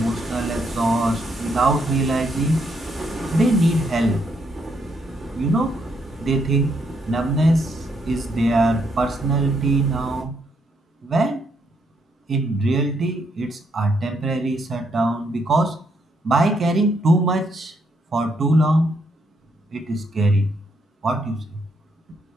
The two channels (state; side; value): normal; both; correlation 0.75